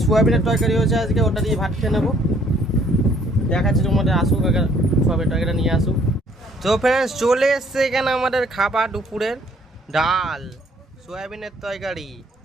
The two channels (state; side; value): normal; both; correlation 0.62